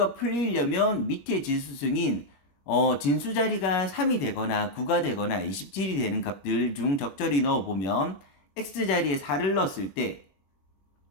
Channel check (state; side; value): late; right; 21 ms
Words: 풀리려면 밑에 지수승인 진수자리가 3이 되거나 9가 되거나 27이 되는 값들 중 적절히 넣어보면 x자리에 4를 넣었을 때